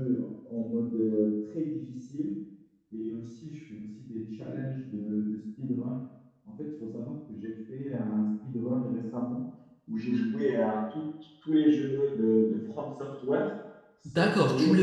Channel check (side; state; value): both; identical; correlation 1.00